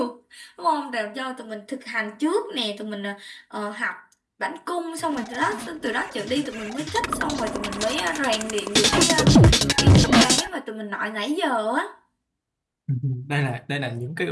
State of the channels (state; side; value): identical; both; correlation 1.00